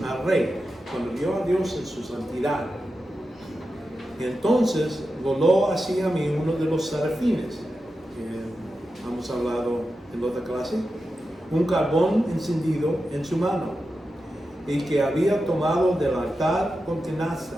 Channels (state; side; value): normal; both; correlation 0.90